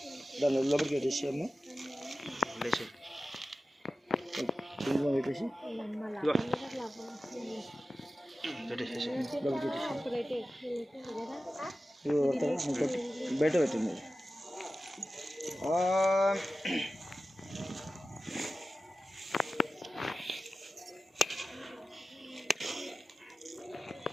దాని లోపలికి పెట్టేసాము. పెట్టేసి బయట పెట్టింది.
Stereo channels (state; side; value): normal; both; correlation 0.94